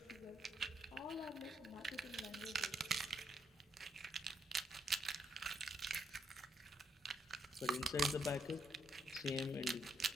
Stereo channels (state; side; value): normal; both; correlation 0.75